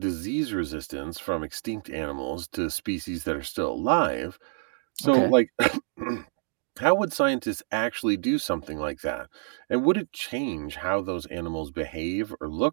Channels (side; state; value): left; silent; 60 dB below the other